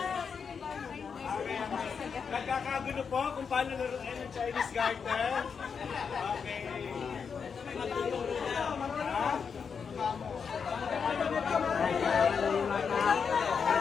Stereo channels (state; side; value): quieter; right; 6.2 dB